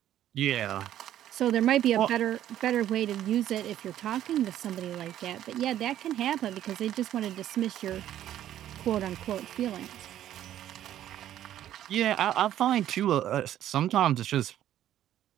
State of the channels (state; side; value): quieter; left; 11.9 dB